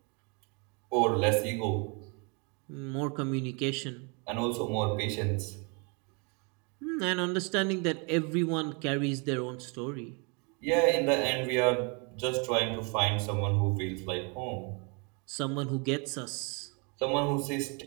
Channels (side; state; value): left; quieter; 33.7 dB